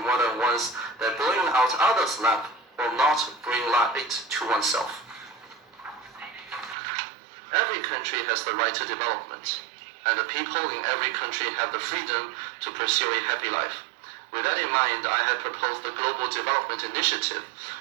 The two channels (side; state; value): left; drops out; at 6.8 s